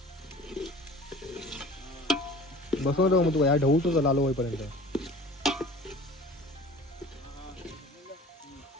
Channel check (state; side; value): normal; both; correlation 0.44